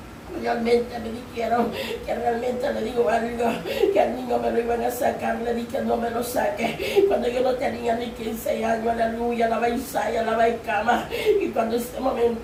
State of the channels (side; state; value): both; identical; correlation 1.00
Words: realmente me dijeron que realmente le digo algo, que al niño me lo iban a sacar, le dije no me lo saque, cuando yo no tenía ni 15 años, aleluya, la baisaya, la baicama, y cuando en ese